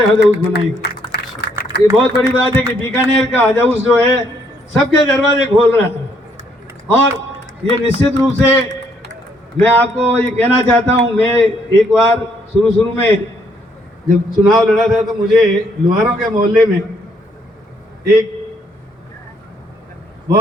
हज हाउस बनाएंगे। ये बहुत बड़ी बात है कि बीकानेर का हज हाउस जो है सबके दरवाजे खोल रहा है। और ये निश्चित रूप से मैं आपको ये कहना चाहता हूँ, मैं एक बार शुरू में जब चुनाव लड़ा था तो मुझे लोहारों के मोहल्ले में एक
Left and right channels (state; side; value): normal; both; correlation 0.70